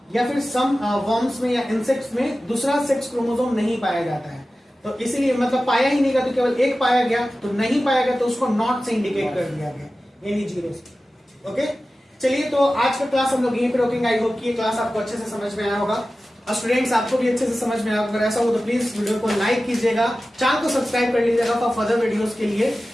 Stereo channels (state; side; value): normal; both; correlation 0.95